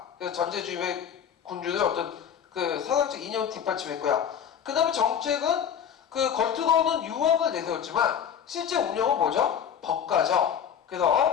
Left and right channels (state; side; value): quieter; right; 8.3 dB